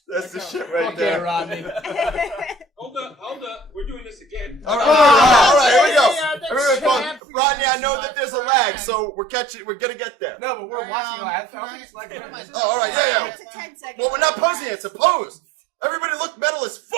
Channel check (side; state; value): left; drops out; at 7.2 s